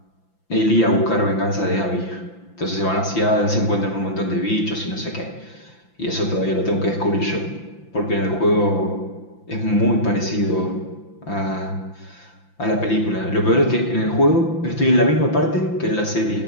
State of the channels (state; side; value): late; right; 5.9 ms